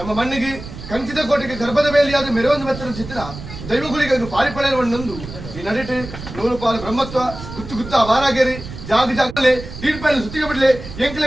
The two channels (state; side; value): noise; right; rumble, 12 dB below the sound